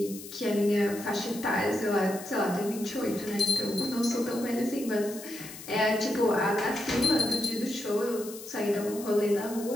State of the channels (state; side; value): noise; left; hiss, 14 dB below the sound